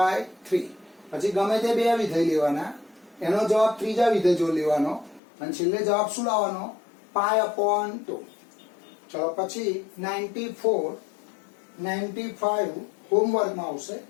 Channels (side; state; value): right; drops out; at 5.2 s